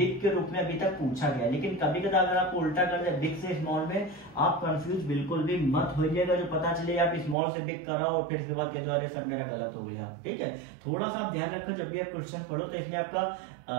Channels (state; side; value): drops out; left; at 7.4 s